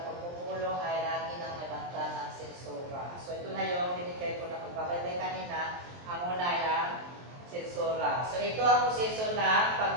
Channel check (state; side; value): late; left; 23 ms